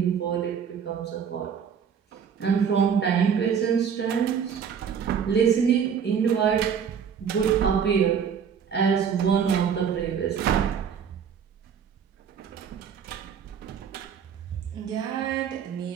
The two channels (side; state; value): left; quieter; 7.4 dB